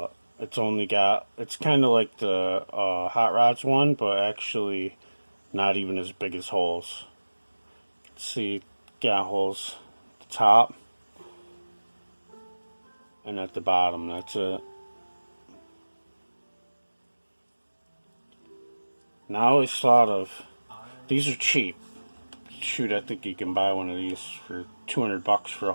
it's kind of like the hot rods one, but actually not even as big as holes. You can see got holes at the top and at the bottom. That's it. Now I always thought of, these are cheap. Shoot, I think you can buy one of these for $200 for a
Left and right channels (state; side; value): inverted; both; correlation -1.00